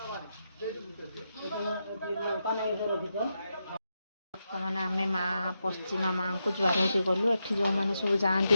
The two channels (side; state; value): both; inverted; correlation -0.86